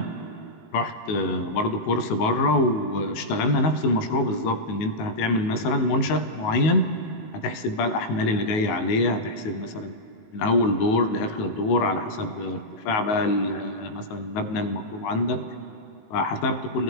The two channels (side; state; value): right; late; 19 ms